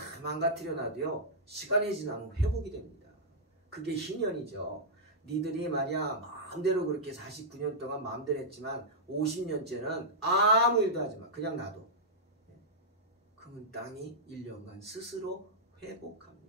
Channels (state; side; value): normal; both; correlation -0.09